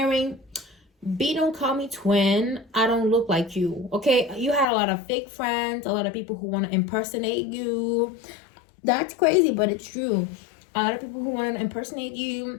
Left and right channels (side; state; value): right; drops out; at 4.7 s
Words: B, don't call me twin. I don't look like you. Okay, you had a lot of fake friends, a lot of people who want to impersonate you. That's crazy, but it's true. A lot of people who want to impersonate